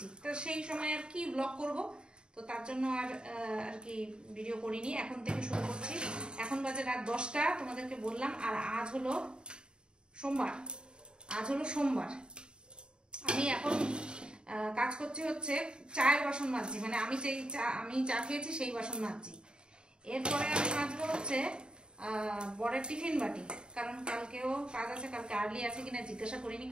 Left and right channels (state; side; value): late; left; 0.050 ms